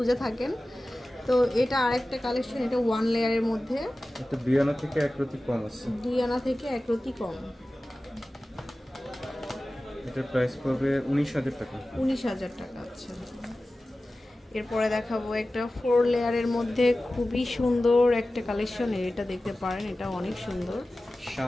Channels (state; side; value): normal; both; correlation 0.96